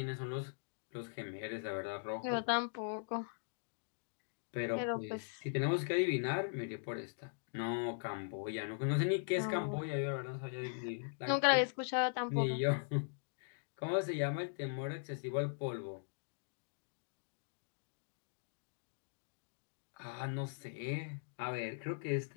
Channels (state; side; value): silent; right; digital silence